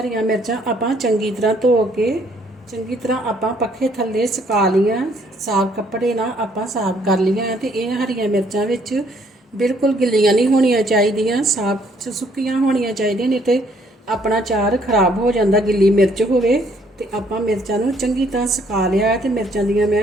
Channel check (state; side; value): normal; both; correlation 0.65